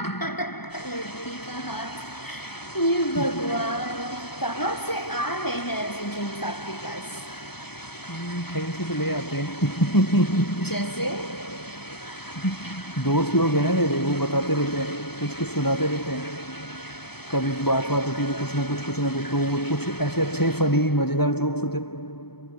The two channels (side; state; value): right; late; 0.97 ms